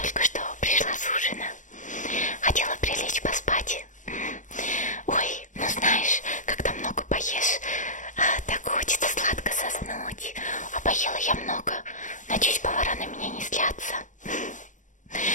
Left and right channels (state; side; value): late; right; 0.37 ms